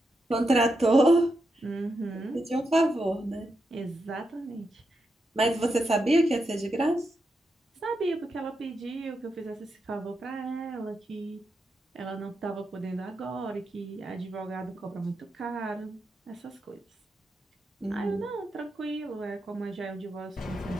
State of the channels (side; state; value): both; normal; correlation 0.86